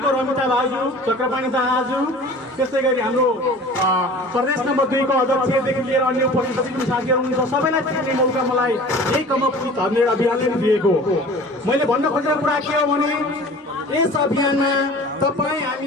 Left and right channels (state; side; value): normal; both; correlation 0.43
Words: रमिता भाउजू, चक्रपाणी दाहाजू, त्यस्तै गरी हाम्रो प्रदेश नम्बर 2 को अध्यक्षदेखि लिएर अन्य उपस्थित जति पनि साथीहरू हुनुहुन्छ सबैलाई चिन्ने मौका मलाई यही कम अप विथ 100 अभियानले दिएको। मैले भन्न खोजेको कुरा के हो भने यस अभियानमा तपाईँ